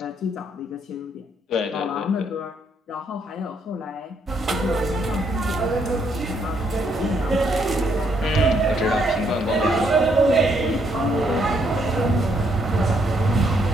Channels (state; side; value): normal; both; correlation 0.72